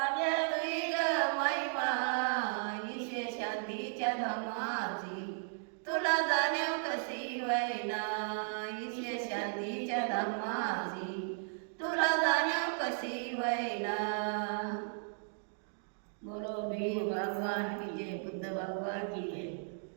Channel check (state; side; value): silent; left; digital silence